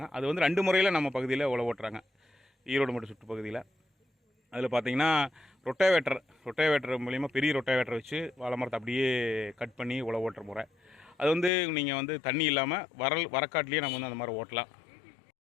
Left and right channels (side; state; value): right; drops out; at 11.5 s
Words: அது வந்து 2 முறையில் நம்ம பகுதியில் உழவு ஓட்டுறாங்க, ஈரோடு மட்டும் சுற்றுப்பகுதியில். அதில் பார்த்திங்கன்னா ரொட்டேவேட்டர் மூலிமா பெரிய ரொட்டேவேட்டர் வச்சு வாழை மரத்தை அப்படியே கட் பண்ணி உழவு ஓட்டுற முறை. அது வந்து நீங்கள் வந்து தண்ணி இல்லாமல் வரக்காட்டிலேயே நம்ம வந்து அந்த மாதிரி ஓட்டலாம்.